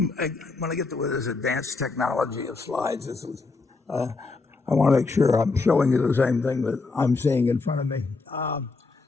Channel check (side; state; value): right; quieter; 4.0 dB